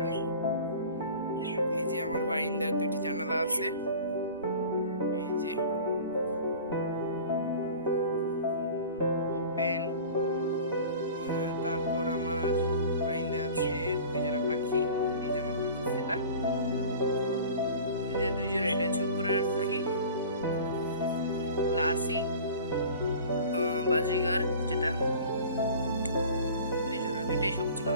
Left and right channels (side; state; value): both; inverted; correlation -0.41